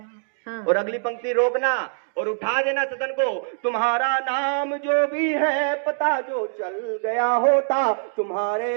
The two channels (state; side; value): silent; left; digital silence